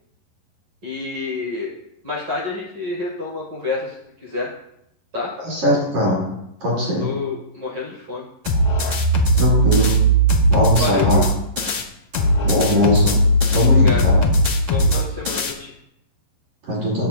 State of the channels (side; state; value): left; late; 11 ms